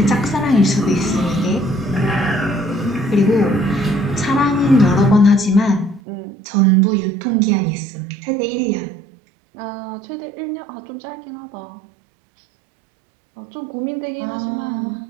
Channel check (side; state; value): left; drops out; at 6.0 s